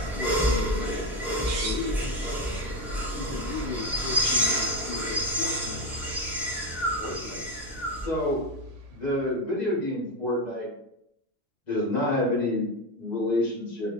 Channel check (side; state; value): both; normal; correlation 0.13